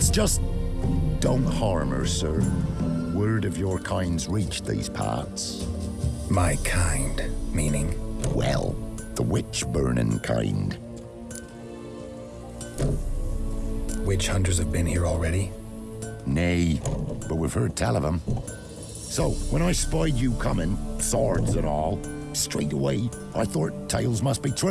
just... don't harm her, sir. Word of your kind's reached these parts. My kind, meaning? Well, the witch-burning kind. Witch hunters have been here already? Nay, but we've heard tell of them. So, when I spied you coming, swords and all, straight away I thought tales must be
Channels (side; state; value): both; identical; correlation 1.00